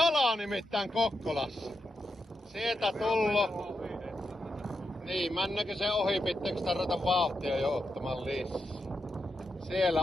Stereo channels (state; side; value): normal; both; correlation 0.86